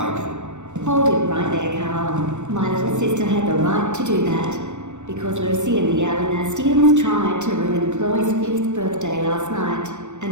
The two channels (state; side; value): late; left; 0.84 ms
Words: Hold it right there, Carl. My little sister had the right to do that, because Lucy and the Alanastians tried to ruin Chloe's 5th birthday last night,